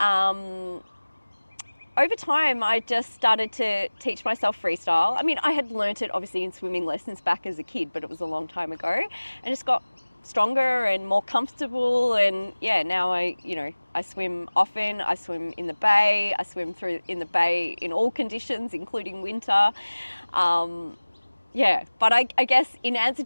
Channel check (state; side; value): inverted; both; correlation -1.00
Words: over time, I just started to teach myself freestyle. I mean, I had learnt it obviously in swimming lessons back as a kid, but it was a long time ago, and just got stronger and more comfortable. And yeah, now I swim often. I swim in the bay. I swim in the bay in all conditions, including winter. Yeah, but I guess in answer